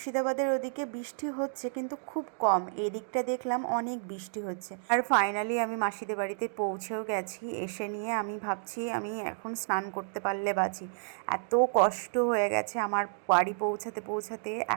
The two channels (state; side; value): silent; left; digital silence